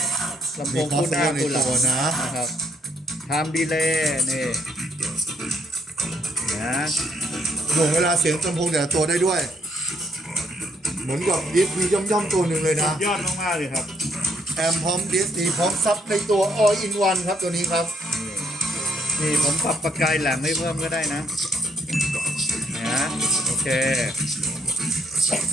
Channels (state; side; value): normal; both; correlation 0.71